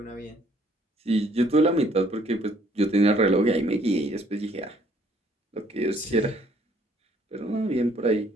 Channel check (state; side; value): normal; both; correlation 0.63